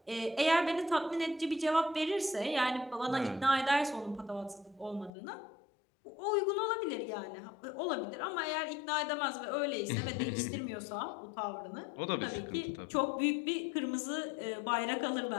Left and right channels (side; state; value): right; drops out; at 5.1 s